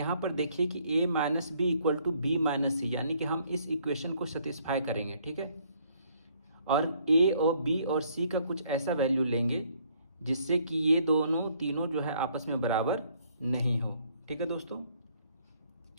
पर देखिए कि a minus B equal to B minus C, यानी कि हम इस इक्वेशन को सेटिस्फाई करेंगे। ठीक है, और a और b और c का कुछ ऐसा वैल्यू लेंगे जिससे कि ये दोनों तीनों जो है आपस में बराबर नहीं हो। ठीक है दोस्तों,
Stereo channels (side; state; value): both; inverted; correlation -0.65